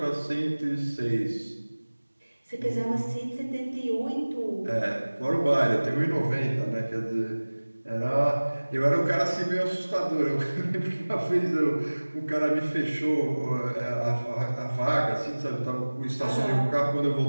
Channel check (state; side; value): inverted; both; correlation -1.00